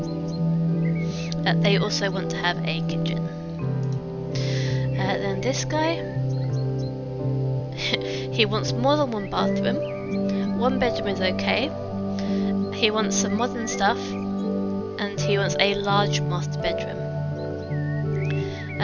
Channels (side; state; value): both; identical; correlation 1.00